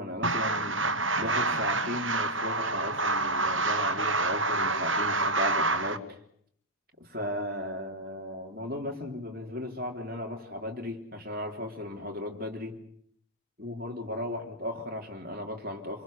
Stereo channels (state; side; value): normal; both; correlation -0.04